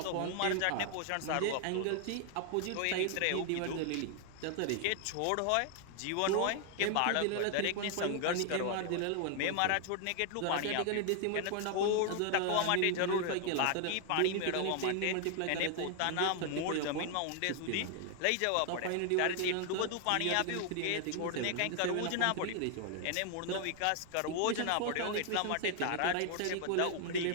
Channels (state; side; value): different; both; correlation 0.00